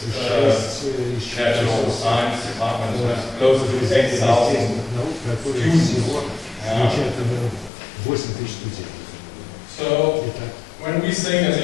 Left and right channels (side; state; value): right; drops out; at 7.7 s